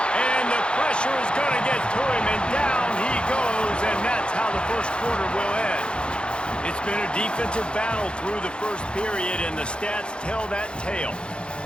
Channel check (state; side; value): late; right; 0.054 ms